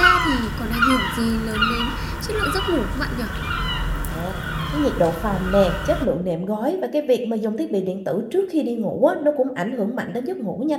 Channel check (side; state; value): both; identical; correlation 1.00